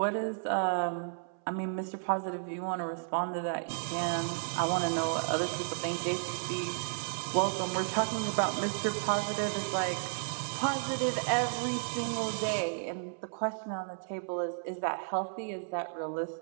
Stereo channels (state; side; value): silent; left; 56 dB below the other